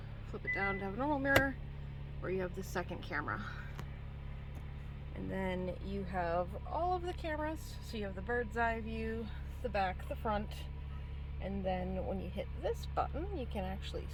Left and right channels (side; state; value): both; identical; correlation 1.00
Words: flip it down to have a normal mirror, or you have the second camera. And then you have all of the cameras, so you have the bird's eye view, the back, the front, and then when you hit this button you can actually